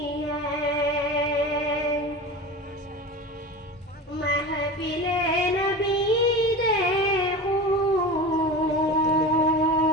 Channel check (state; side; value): normal; both; correlation 0.30